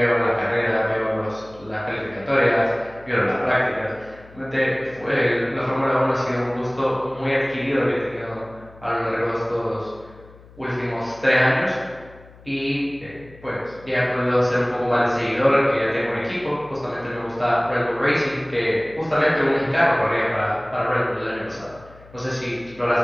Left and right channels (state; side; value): noise; left; hum, 23 dB below the sound